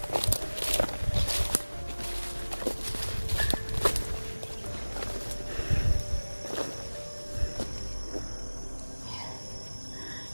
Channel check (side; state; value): both; inverted; correlation -1.00